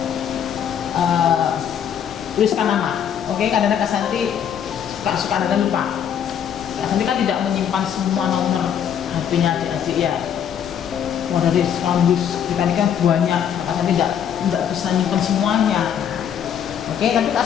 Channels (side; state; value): right; quieter; 8.7 dB